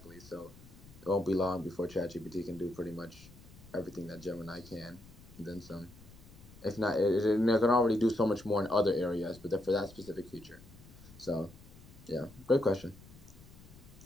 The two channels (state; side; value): noise; left; rumble, 21 dB below the sound